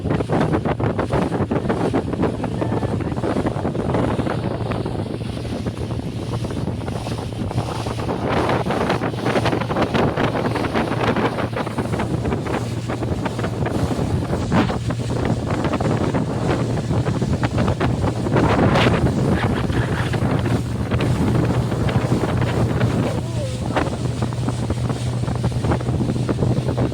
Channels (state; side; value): identical; both; correlation 1.00